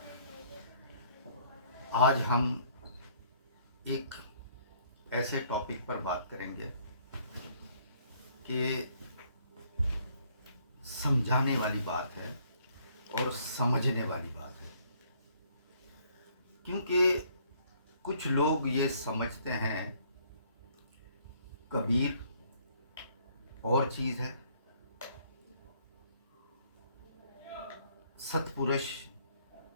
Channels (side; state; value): both; inverted; correlation -0.63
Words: आज हम एक ऐसे टॉपिक पर बात करेंगे कि समझाने वाली बात है और समझने वाली बात है, क्योंकि कुछ लोग ये समझते हैं कबीर और चीज़ है, सतपुरुष